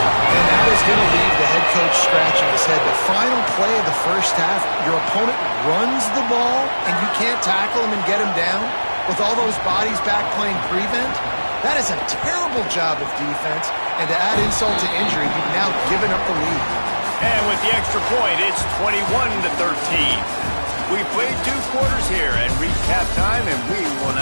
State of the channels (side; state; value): both; inverted; correlation -1.00